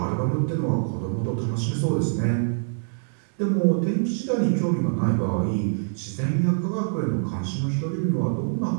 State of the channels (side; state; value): left; silent; digital silence